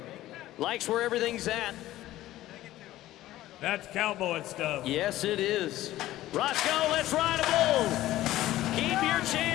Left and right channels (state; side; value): quieter; right; 15.1 dB